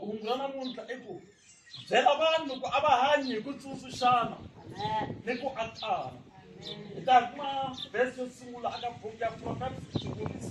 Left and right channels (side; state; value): both; identical; correlation 1.00